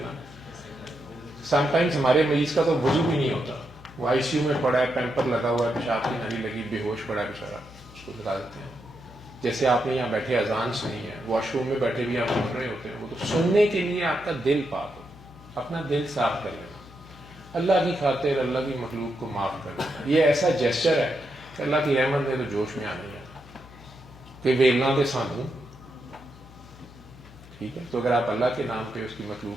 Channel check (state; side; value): noise; left; hum, 21 dB below the sound